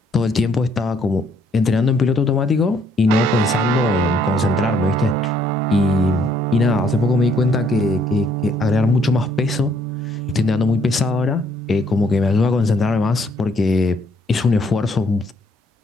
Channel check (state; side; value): normal; both; correlation 0.66